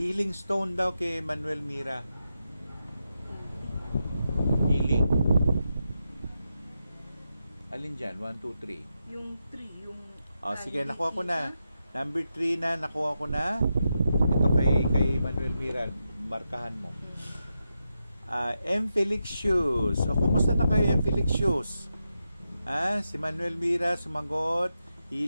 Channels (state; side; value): inverted; both; correlation -0.87